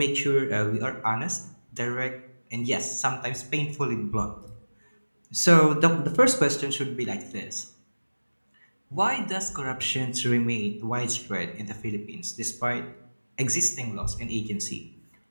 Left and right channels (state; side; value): inverted; both; correlation -1.00